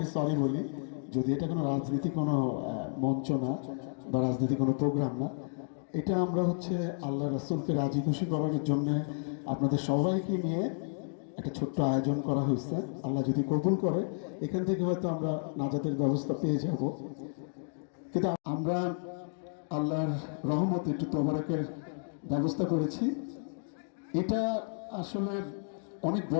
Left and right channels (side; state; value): right; silent; digital silence